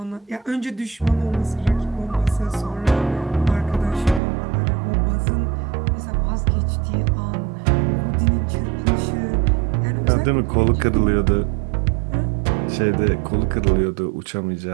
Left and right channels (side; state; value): left; drops out; at 4.2 s